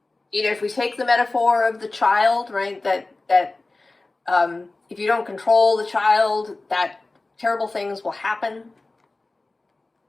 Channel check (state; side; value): quieter; right; 3.2 dB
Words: if we take the metaphor of the child, right, that if you don't control the child, that terrible things will happen.